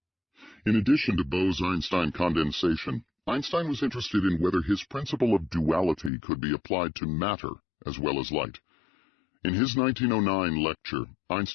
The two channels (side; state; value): right; drops out; at 6.1 s